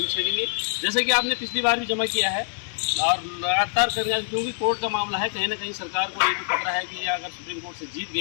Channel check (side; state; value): right; silent; digital silence